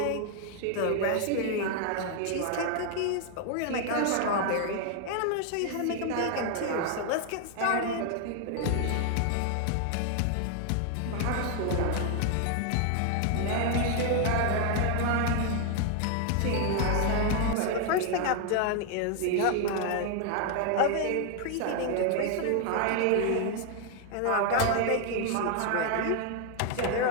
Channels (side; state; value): both; different; correlation 0.00